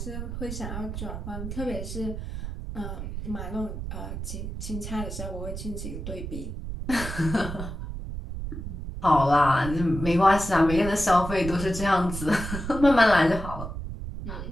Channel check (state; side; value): noise; right; rumble, 7 dB below the sound